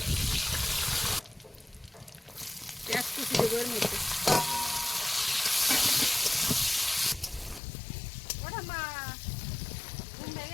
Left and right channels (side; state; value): right; drops out; at 7.6 s